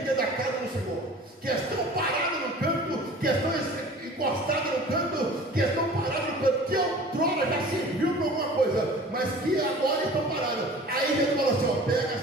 dentro da casa do Senhor, que estão parados no canto, que estão encostados no canto, que estão parados no canto, que outrora já serviu para alguma coisa, mas que agora estão parados. Aí ele falou assim: ó, pega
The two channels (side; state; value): both; normal; correlation 0.44